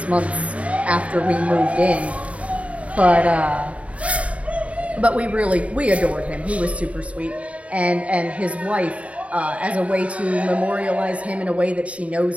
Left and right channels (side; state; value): left; late; 0.065 ms